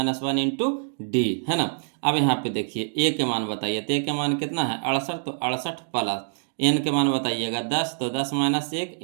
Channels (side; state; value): left; silent; digital silence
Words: 1 into D, है ना। अब यहाँ पे देखिए ए के मान बताइए, तो ए के मान कितना है 68, तो 68 प्लस एन के मान बताइएगा 10, तो 10 माइनस 1